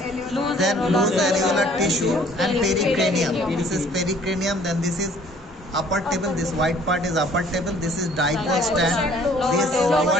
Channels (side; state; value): both; normal; correlation 0.57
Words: then loose alveolar tissue, and pericranium. This is pericranium, then this is upper table, this white part is upper table, this is dipole stand, this lower